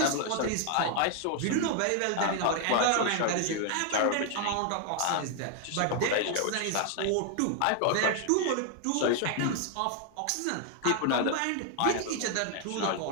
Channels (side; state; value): both; different; correlation 0.00